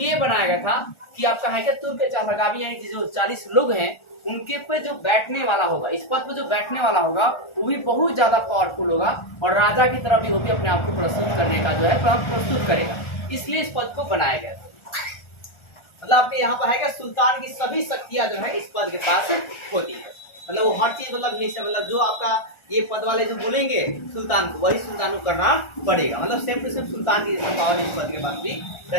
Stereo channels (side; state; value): right; late; 1.4 ms